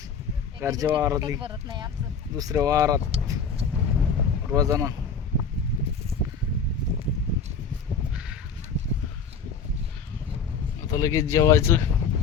घरच्या वावरातली भरत नाही आमचं. दुसऱ्या वावरात रोजानं. आता लगेच जेवायचं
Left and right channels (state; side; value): quieter; right; 5.6 dB